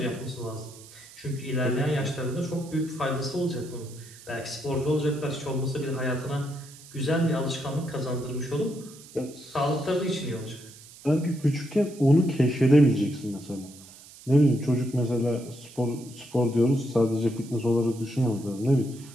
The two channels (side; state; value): right; noise; hiss, 20 dB below the sound